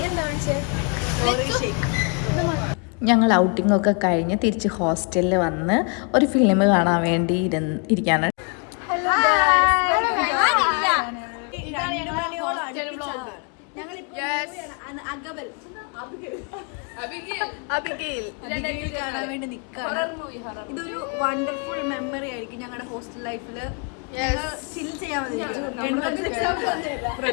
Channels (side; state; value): right; quieter; 37.8 dB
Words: എന്താ വിളിച്ചേ? ഞങ്ങൾ ഔട്ടിങ്ങൊക്കെ കഴിഞ്ഞ് തിരിച്ച് ഹോസ്റ്റലിൽ വന്ന് ഒരു ഫിലിം കാണാൻ വേണ്ടി ഇരിക്കാണ്. അബിഗയിൽ കാണാൻ വേണ്ടി നിൽക്കാണ്. ഇതൊരു വണ്ടർഫുൾ മെമ്മറി ആയിരിക്കും ഞങ്ങളുടെ ഹോസ്റ്റൽ ലൈഫിൽ. ചിൽ ചെയ്യാൻ